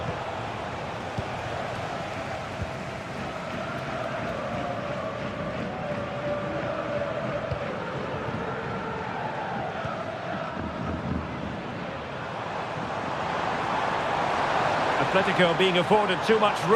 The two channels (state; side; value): identical; both; correlation 1.00